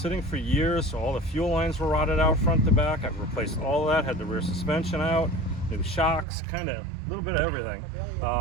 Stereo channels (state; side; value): drops out; left; at 6.2 s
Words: for years, so all the fuel lines were rotted out front to back. I replaced all of that, had the rear suspension out, new shocks, kind of a little bit of everything.